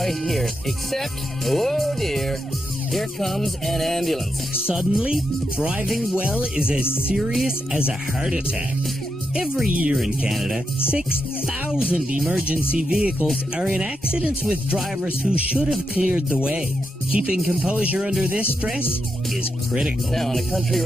here. Except, oh dear, here comes an ambulance. Suddenly, driving well is as serious as a heart attack. Every year in Canada, 6,000 emergency vehicles are in accidents with drivers who should have cleared the way. Keeping composure under this stress is critical. Now, on a country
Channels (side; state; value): both; normal; correlation 0.84